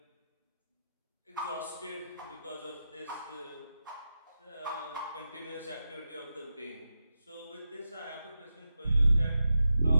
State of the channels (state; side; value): inverted; both; correlation -0.90